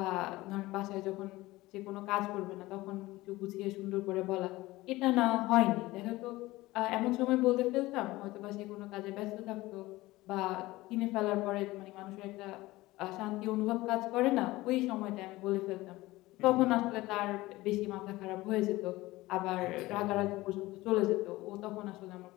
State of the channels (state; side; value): quieter; right; 18.9 dB